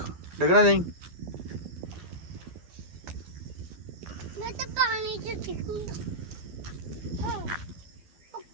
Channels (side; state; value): left; late; 12 ms